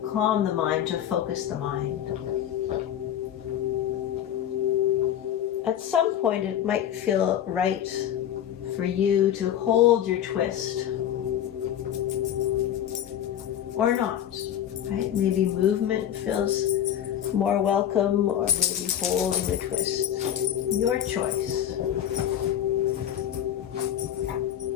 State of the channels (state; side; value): quieter; right; 10.5 dB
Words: calm the mind, to focus the mind. At some point, it might feel right for you to hold your twist. Or not, right? Maybe movement feels more welcome, or maybe holding the twist. Your choice.